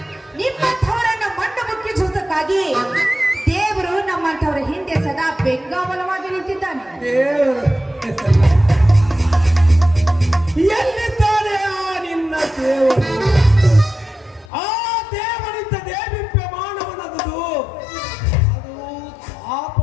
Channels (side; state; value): right; drops out; at 14.5 s